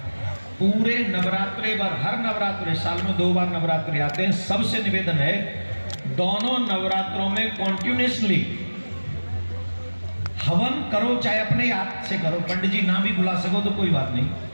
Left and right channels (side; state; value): both; inverted; correlation -1.00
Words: पूरे नवरात्रे भर, हर नवरात्रे, साल में 2 बार नवरात्रि आते हैं, सबसे निवेदन है दोनों नवरात्रों में कॉन्टिन्यूसली हवन करो, चाहे अपने हाथ से करो, पंडित जी ना भी बुला सको तो कोई बात नहीं।